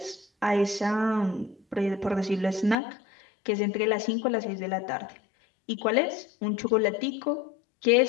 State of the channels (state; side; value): drops out; right; at 2.8 s